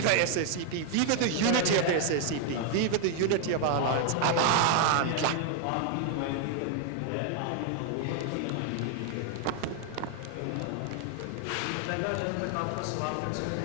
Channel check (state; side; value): different; both; correlation 0.00